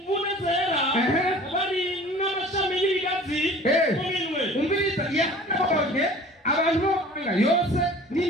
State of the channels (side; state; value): both; normal; correlation 0.45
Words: zera bari n'amashami y'ibigazi mu minwe. Umviriza yahanabonye abantu b'amahanga yose